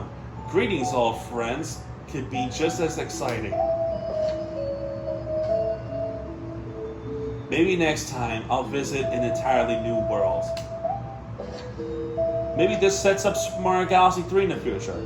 Greetings, old friends, could be just as exciting. Maybe next time I'll visit an entirely new world. Maybe this sets up Super Mario Galaxy 3 in the future.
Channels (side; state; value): both; identical; correlation 1.00